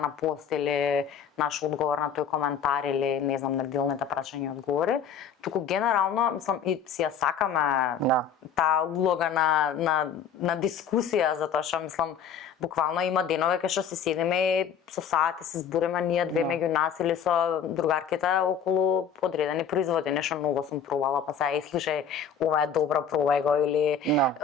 на пост или наш одговор на тој коментар или не знам неделните прашања и одговори, туку генерално мислам и си ја сакаме таа улога на дискусија, затоа што мислам буквално има денови кај што се седиме и со сати се збориме ние две меѓу нас или со другарките околу одредени производи, нешто многу сум пробала, па сега слушај, ова е добро, пробај го или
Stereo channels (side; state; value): right; quieter; 6.9 dB